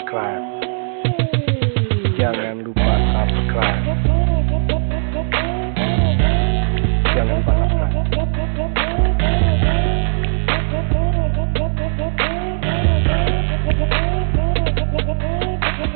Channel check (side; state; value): left; silent; digital silence